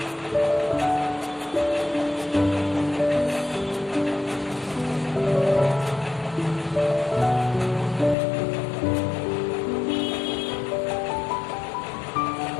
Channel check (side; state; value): right; drops out; at 8.2 s